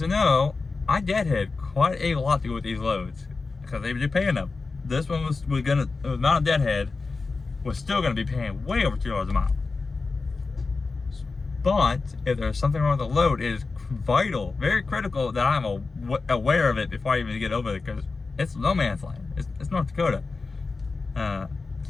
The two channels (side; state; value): right; quieter; 4.0 dB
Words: who know, I deadhead quite a lot to go with these loads because they were paying them. This one was the amount of deadhead was still going to be paying way over $2 a mile. But if there's something wrong with the load, it is vital, very critical that I'm aware of it before I even get over it, because it's no man's land. It's North Dakota,